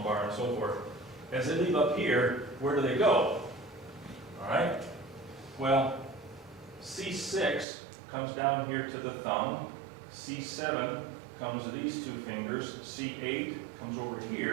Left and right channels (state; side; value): drops out; left; at 7.7 s